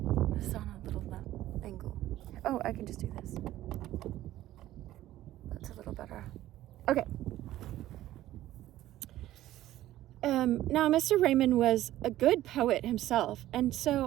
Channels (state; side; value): quieter; left; 14.3 dB